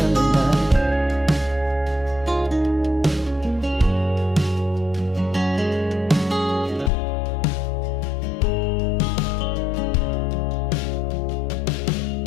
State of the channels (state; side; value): drops out; right; at 6.9 s